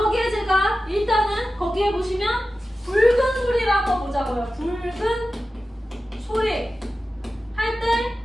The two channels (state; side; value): normal; both; correlation 0.94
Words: 제가 일단은 거기에 보시면 붉은 소리를 한번 보자고요. 붉은 소리 할 때